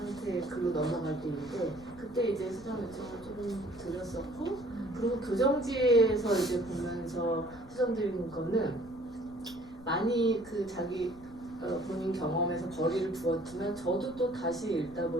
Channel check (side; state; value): left; noise; rumble, 22 dB below the sound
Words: 글로 넘어갈 때인데 그때 이제 수정 요청을 조금 드렸었고 그리고 교정지에서 이제 보면서 수정드리는 거는 많이 그 자기 본인 경험에서 거리를 두었지만 저도 또 다시 읽다